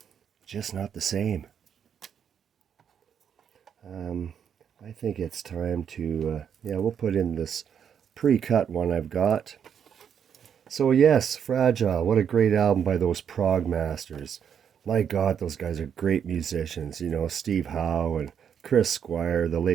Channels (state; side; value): quieter; left; 8.0 dB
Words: just not the same. I think it's time to, we'll put in this pre-cut one I've got. So yes, Fragile, what a great album by those prog masters. My God, those guys are great musicians. You know, Steve Howe and Chris Squire, the